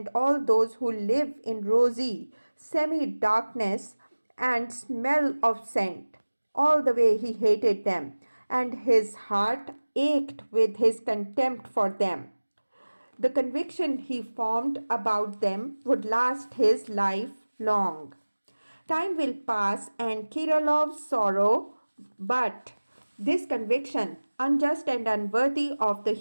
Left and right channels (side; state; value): both; inverted; correlation -1.00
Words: all those who live in rosy semi-darkness and smell of scent. All the way he hated them, and his heart ached with his contempt for them. The conviction he formed about them would last his life long. Time will pass and Kirilov's sorrow, but this conviction, unjust and unworthy of the